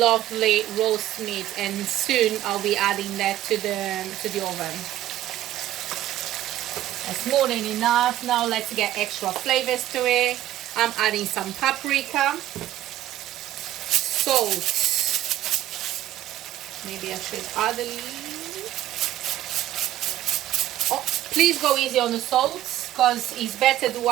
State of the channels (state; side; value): quieter; left; 13.7 dB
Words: roast meat, and soon I'll be adding that to the oven. That's more than enough. Now let's get extra flavors to it. I'm adding some paprika, salt. Maybe I should add a little. Oh, please go easy on the salt, because it's better to